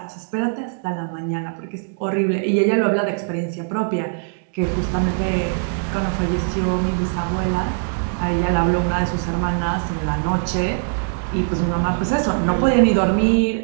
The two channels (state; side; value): silent; left; digital silence